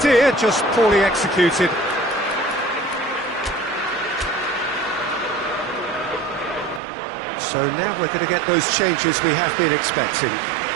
just poorly executed. So now we're going to get those changes we have been expecting.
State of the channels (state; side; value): drops out; left; at 6.8 s